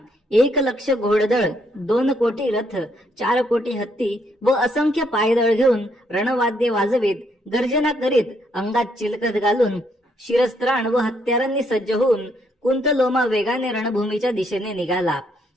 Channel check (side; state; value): both; normal; correlation 0.72